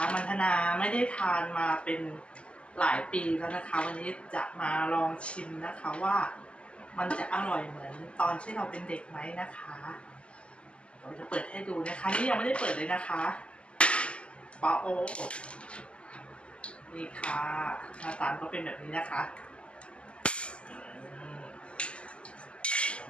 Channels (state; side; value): late; right; 0.059 ms